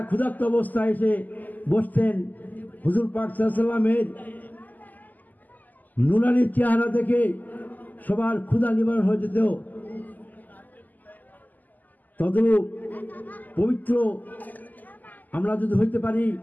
ক্ষুধার্ত অবস্থায় এসে বসতেন। হুজুর পাক সাল্লাল্লাহু আলাইহি সাল্লামের নুরানি চেহারা দেখে সবার ক্ষুধা নিবারণ হয়ে যেত। তদ্রূপ পবিত্র আমরা যদি হইতে পারি,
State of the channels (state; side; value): late; right; 0.083 ms